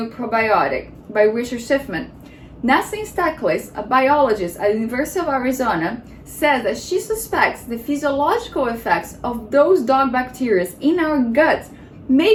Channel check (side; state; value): both; identical; correlation 1.00